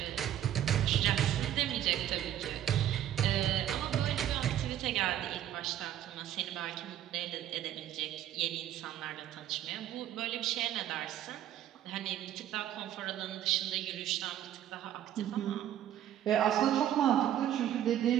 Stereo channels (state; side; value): quieter; left; 11.4 dB